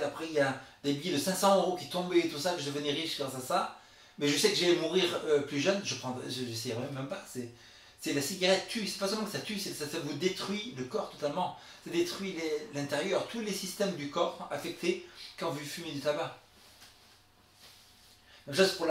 après il y a des billets de 500 € qui tombaient et tout ça, que je devenais riche grâce à ça, mais je sais que j'allais mourir plus jeune, je n'essayerais même pas. C'est la cigarette tue, c'est pas seulement que ça tue, ça vous détruit le corps totalement. Ça détruit l'intérieur, tous les systèmes du corps affectés quand vous fumez du tabac. Même chose pour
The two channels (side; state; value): both; identical; correlation 1.00